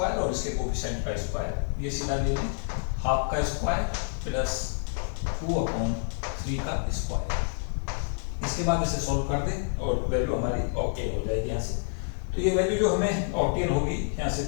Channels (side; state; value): right; silent; 59 dB below the other